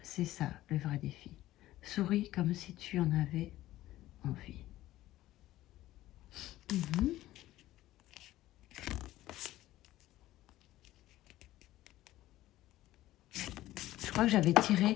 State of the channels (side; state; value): right; quieter; 15.4 dB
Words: c'est ça, le vrai défi. Souris comme si tu en avais envie. Je crois que j'avais tiré...